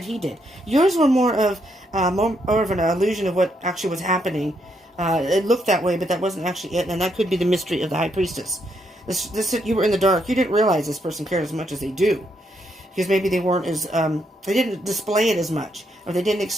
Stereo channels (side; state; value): both; normal; correlation 0.76